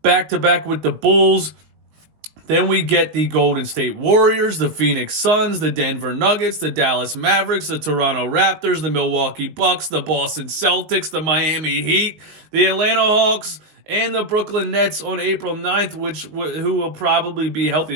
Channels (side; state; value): left; late; 19 ms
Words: back-to-back with the Bulls. Then we get the Golden State Warriors, the Phoenix Suns, the Denver Nuggets, the Dallas Mavericks, the Toronto Raptors, the Milwaukee Bucks, the Boston Celtics, the Miami Heat, the Atlanta Hawks, and the Brooklyn Nets on April 9th, who will probably be